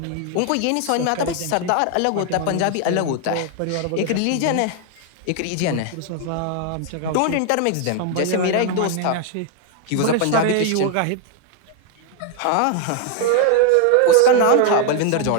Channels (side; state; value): both; different; correlation 0.00